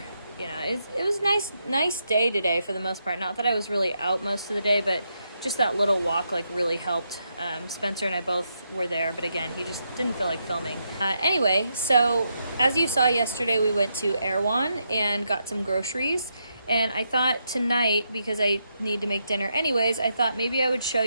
It was nice day today for the most part. Not that I was really out most of the day, but just that little walk really helped. Spencer and I both were there, but again, he just didn't feel like filming. Anyway, so as you saw yesterday, we went to Erewhon and got some groceries. And I thought tonight, because I need to make dinner anyways, I thought maybe I would show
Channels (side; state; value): both; inverted; correlation -0.81